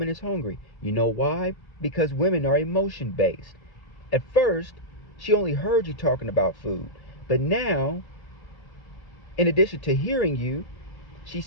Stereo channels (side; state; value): right; late; 1.5 ms